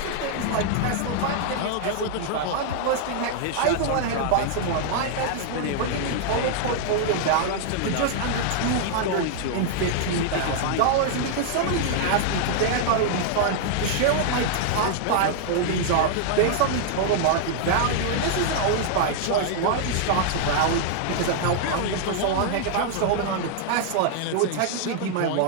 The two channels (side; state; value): both; different; correlation -0.01